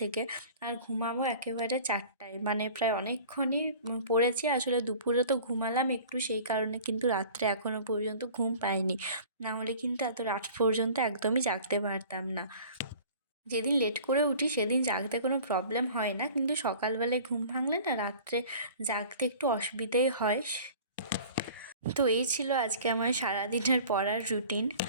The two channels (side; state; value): both; inverted; correlation -0.45